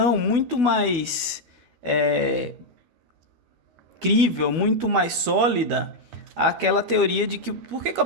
muito mais crível, muito mais sólida aquela teoria de que por que o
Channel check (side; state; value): left; late; 12 ms